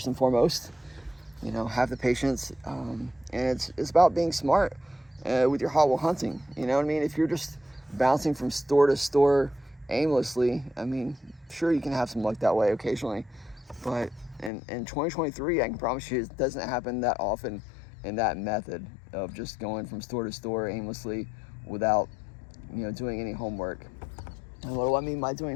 and foremost, you know, have the patience, and it's about being smart with your Hot Wheel hunting. You know what I mean? If you're just bouncing from store to store aimlessly, I mean, sure, you can have some luck that way occasionally, but in 2023, I can promise you it doesn't happen that often in that method of just going from store to store aimlessly without, you know, doing any homework. And what do I mean by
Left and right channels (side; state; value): right; drops out; at 14.5 s